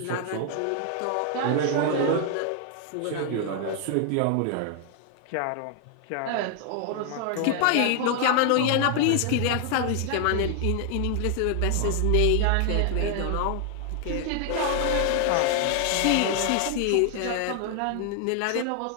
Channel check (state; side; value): different; both; correlation 0.00